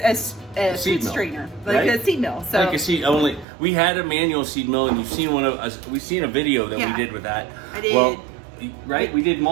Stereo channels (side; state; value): left; drops out; at 3.5 s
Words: a seed food mill, strainer, like right? a seed mill. So like a seed only. We had a manual seed mill, and you've seen one of us. We've seen a video that Yeah. we did with that. I did. Well, right? We did